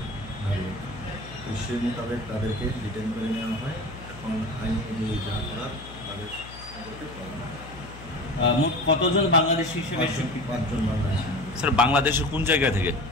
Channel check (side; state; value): left; noise; hum, 15 dB below the sound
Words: নাগরিক। তো সেই মোতাবেক তাদেরকে ডিটেইন করে নেওয়া হয়। এখন আইন অনুযায়ী যা করার তাদের সম্পর্কে পাওয়া হয়। মোট কতজন বাংলাদেশি হিসেবে? 5 জন বাংলাদেশি। স্যার বাংলাদেশের কোন জায়গা থেকে?